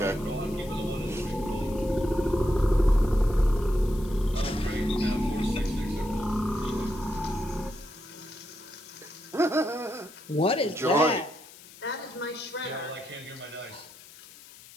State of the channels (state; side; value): noise; left; hiss, 20 dB below the sound